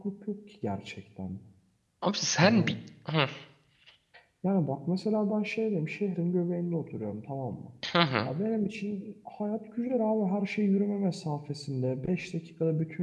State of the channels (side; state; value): both; identical; correlation 1.00